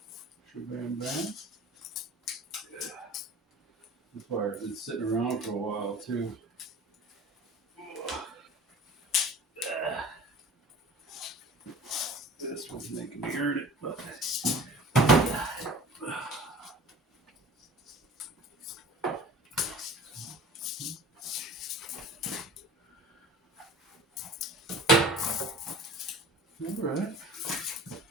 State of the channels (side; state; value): both; normal; correlation 0.42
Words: Bam. This wire's been sitting around for a while too. This one's making me earn it, but all right.